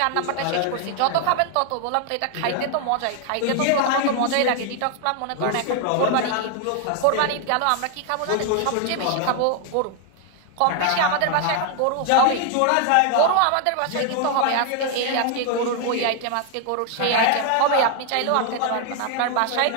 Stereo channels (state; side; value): different; both; correlation 0.00